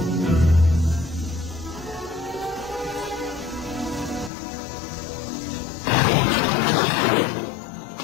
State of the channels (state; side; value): drops out; right; at 4.3 s